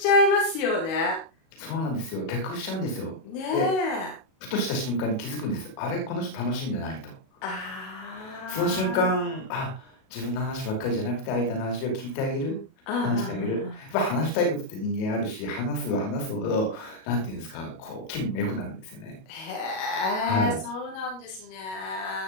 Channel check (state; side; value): late; right; 37 ms